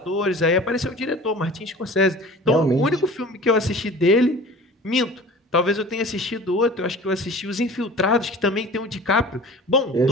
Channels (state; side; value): normal; both; correlation 0.41